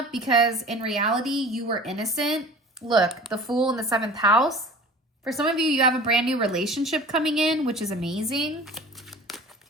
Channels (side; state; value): both; normal; correlation 0.42